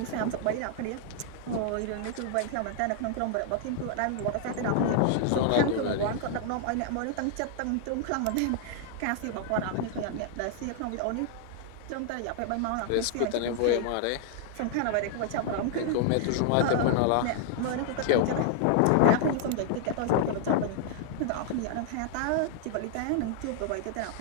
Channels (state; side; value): different; both; correlation 0.00